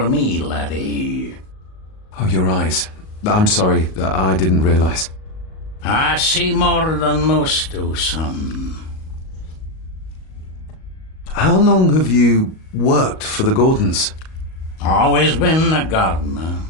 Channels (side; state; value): right; late; 38 ms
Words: me, laddie. Oh, your eyes. I'm sorry, I didn't realize. I see more than most do, son. How long have you worked for the Gordons? Always been a gardener,